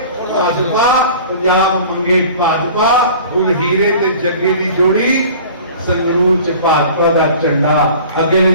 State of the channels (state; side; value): inverted; both; correlation -0.44